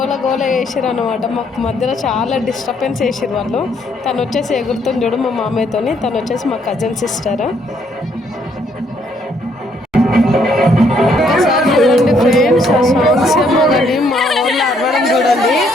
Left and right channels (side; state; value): both; normal; correlation 0.69